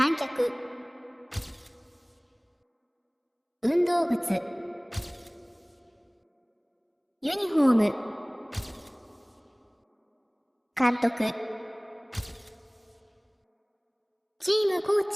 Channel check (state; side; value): identical; both; correlation 1.00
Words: 客運動靴ユニフォーム監督チームコー